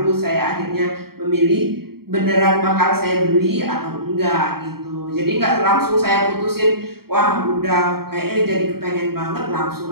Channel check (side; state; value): left; late; 0.95 ms